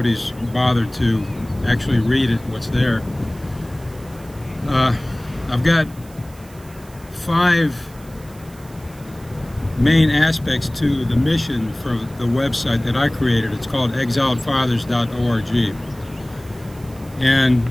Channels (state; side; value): noise; right; hiss, 24 dB below the sound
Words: bothered to actually read it, what's there. I've got 5 main aspects to the mission for the website that I created. It's called exiledfathers.org. And